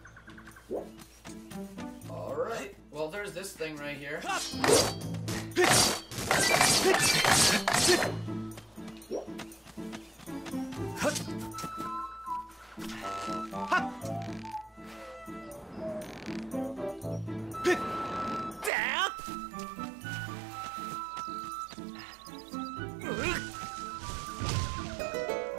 Alright, well there's this thing right here.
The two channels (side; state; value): left; drops out; at 18.7 s